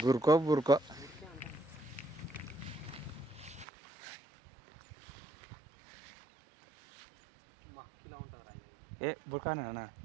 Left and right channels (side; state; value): left; drops out; at 3.7 s